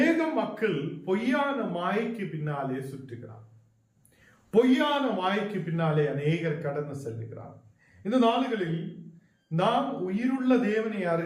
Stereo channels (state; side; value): identical; both; correlation 1.00